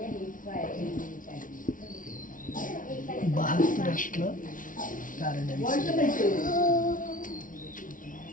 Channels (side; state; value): right; late; 0.38 ms